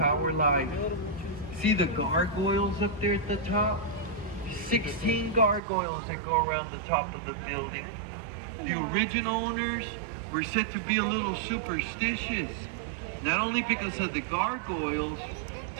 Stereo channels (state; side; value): drops out; left; at 5.6 s